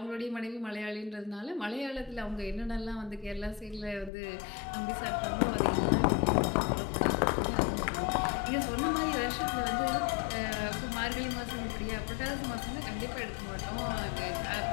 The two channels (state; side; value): drops out; right; at 4.1 s